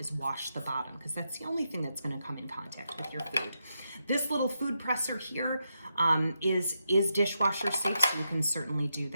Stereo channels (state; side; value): inverted; both; correlation -0.85